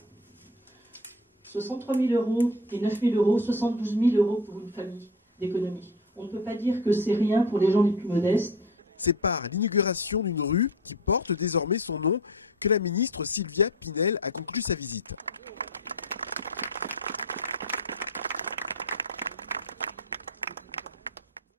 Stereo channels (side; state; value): both; normal; correlation 0.29